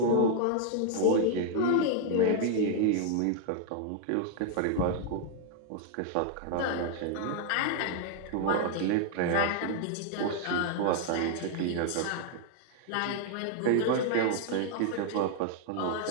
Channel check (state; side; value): different; both; correlation 0.00